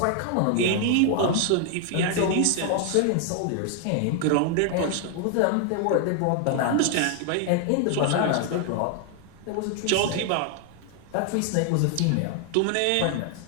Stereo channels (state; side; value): different; both; correlation 0.00